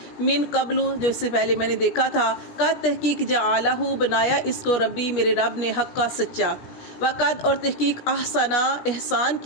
من قبل جو اس سے پہلے میں نے دیکھا تھا، کا تحقیق جعلہ بنایا اس کو ربی میرے رب نے، حقا سچا، وقد اور تحقیق احسنا احسان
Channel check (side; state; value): right; late; 16 ms